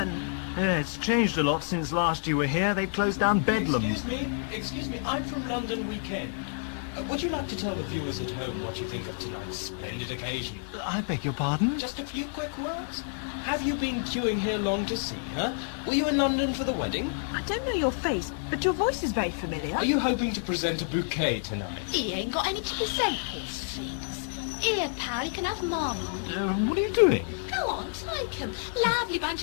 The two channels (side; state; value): right; silent; digital silence